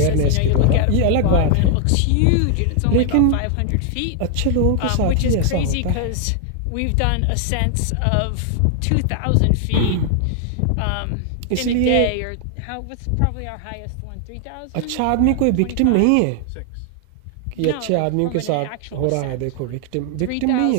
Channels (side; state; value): both; different; correlation 0.00